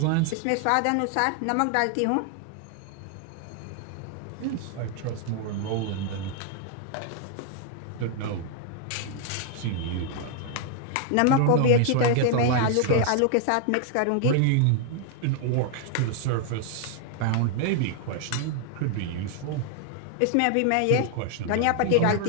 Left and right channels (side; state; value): both; different; correlation 0.00